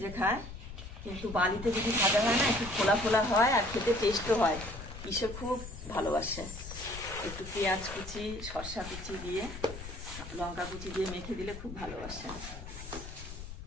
খায়, কিন্তু বালিতে যদি ভাজা হয় না একটু ফোলা ফোলা হয়, আর খেতে টেস্টও হয়। কিশোর খুব ভালোবাসে। একটু পেঁয়াজ কুচি, শসা কুচি দিয়ে, লঙ্কা কুচি দিয়ে মেখে দিলে খুব ভালোবাসে।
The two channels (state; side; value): noise; left; rumble, 11 dB below the sound